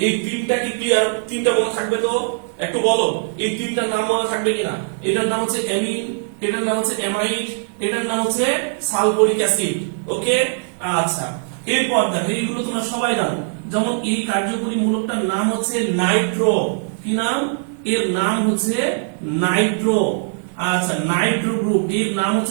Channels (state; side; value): silent; left; 65 dB below the other